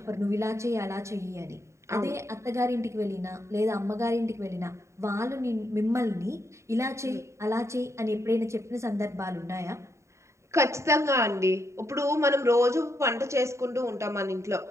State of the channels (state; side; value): late; left; 0.14 ms